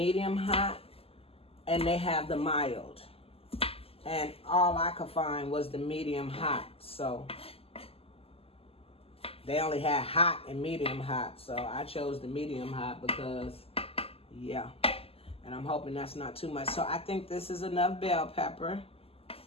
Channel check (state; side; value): late; right; 0.28 ms